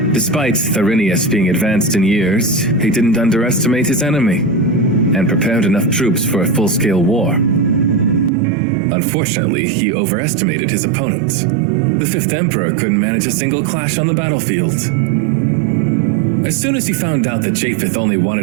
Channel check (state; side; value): drops out; left; at 8.3 s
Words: Despite Tharinius being advanced in years, he didn't underestimate his enemy, and prepared enough troops for a full-scale war. Unfortunately, he overestimated his opponent. The 5th Emperor couldn't manage a single clash on the battlefield. As soon as he found out that Japheth only